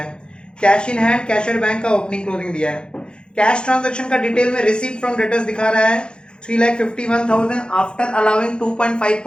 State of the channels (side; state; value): right; late; 0.051 ms